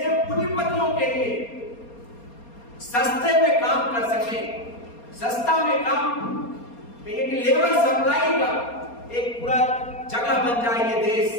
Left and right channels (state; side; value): late; right; 4.3 ms